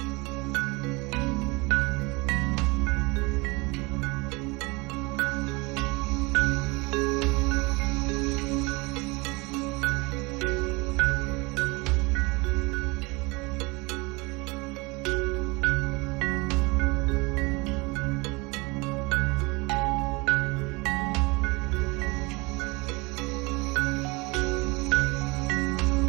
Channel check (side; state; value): left; quieter; 25.8 dB